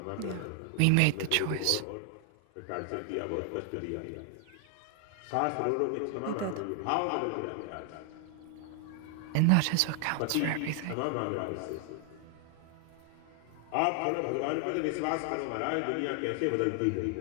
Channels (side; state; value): both; different; correlation 0.00